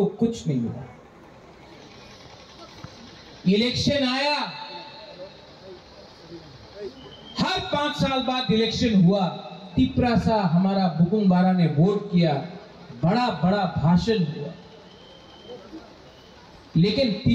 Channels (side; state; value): both; identical; correlation 1.00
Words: कुछ नहीं मिला। इलेक्शन आया, हर 5 साल बाद इलेक्शन हुआ, तिपरासा हमारा बुकुंग बारा ने वोट किया, बड़ा बड़ा भाषण हुआ, लेकिन